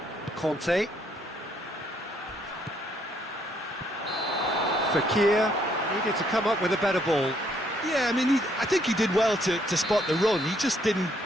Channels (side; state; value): both; normal; correlation 0.69